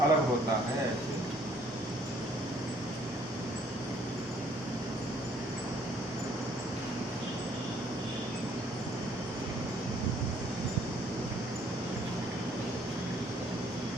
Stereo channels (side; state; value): both; normal; correlation 0.63